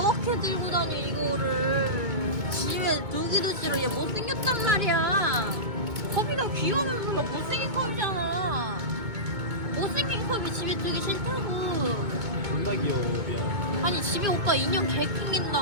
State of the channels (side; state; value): left; late; 2.2 ms